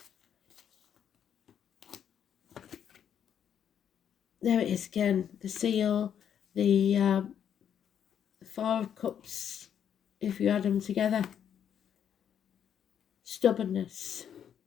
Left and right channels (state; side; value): quieter; right; 8.8 dB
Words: There it is again, the seal, the 4 of Cups, if you add them together. Stubbornness